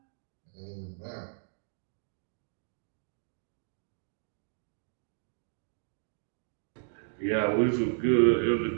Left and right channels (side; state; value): left; silent; digital silence